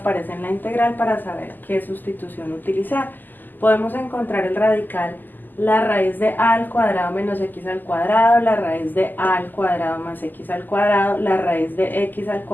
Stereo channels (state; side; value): late; right; 0.088 ms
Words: en la integral para saber qué sustitución utilizar. Podemos encontrar el radical la raíz de a al cuadrado menos x al cuadrado, la raíz de a al cuadrado más x al cuadrado, la raíz de x al